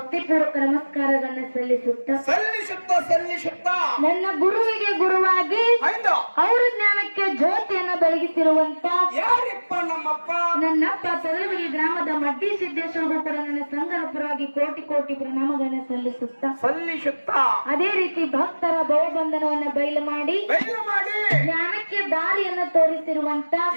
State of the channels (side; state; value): both; inverted; correlation -1.00